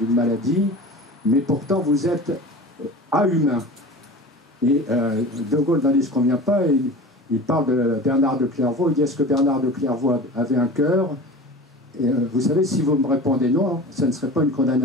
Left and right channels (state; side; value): normal; both; correlation 0.36